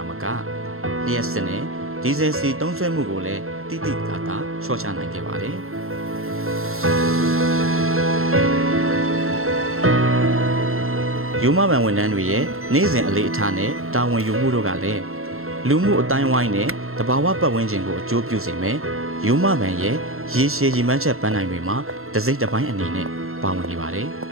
မကလျှက်စစ်နဲ့ဒီဇယ်စီသုံးစွဲမှုကိုလည်းတိတိကျကျလျှော့ချနိုင်ခဲ့ပါတယ်။ယူမဘန်ဝန်ထမ်းတွေရဲ့နေ့စဉ်အလေးအထားနဲ့တာဝန်ယူမှုတို့ကလည်းလူမှုအတိုင်းဝိုင်းနဲ့တဘာဝပတ်ဝန်းကျင်ကိုအကျိုးပြုစေမယ်။ယူမဘန်ရဲ့ရေရှည်ရည်မှန်းချက်ပန်းနိုင်တွေမှာတစ်စိတ်တစ်ပိုင်းအနေနဲ့ပါဝင်နေပါတယ်။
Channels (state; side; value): late; left; 0.62 ms